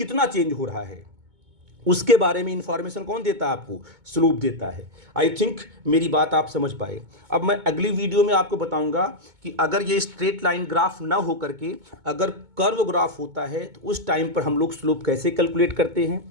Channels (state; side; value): late; left; 2.2 ms